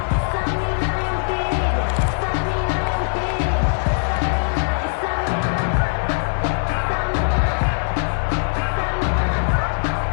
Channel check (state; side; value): silent; right; digital silence